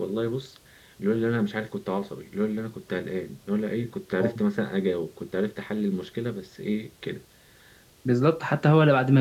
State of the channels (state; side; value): identical; both; correlation 1.00